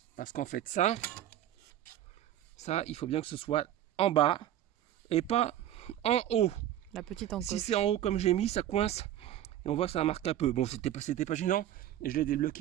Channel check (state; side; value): quieter; left; 12.0 dB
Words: Parce qu'en fait, ça, il faut bien que ce soit en bas et pas en haut. La petite encoche. Si c'est en haut comme j'ai mis, ça coince. Et on voit que ça marque un peu. Bon, c'était pas gênant. Et je l'ai